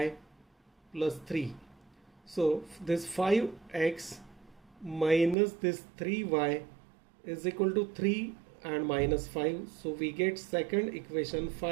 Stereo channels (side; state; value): left; drops out; at 5.4 s